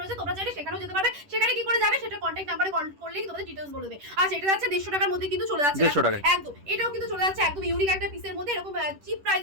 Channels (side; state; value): left; late; 10 ms